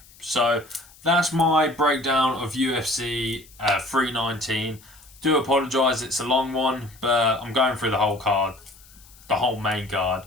so that's my breakdown of UFC 319. Do apologise, it's a long one, but I'm going through the whole card, the whole main card,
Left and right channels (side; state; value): left; noise; hiss, 24 dB below the sound